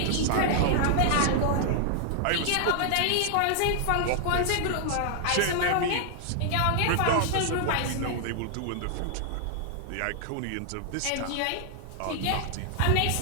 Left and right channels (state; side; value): different; both; correlation 0.00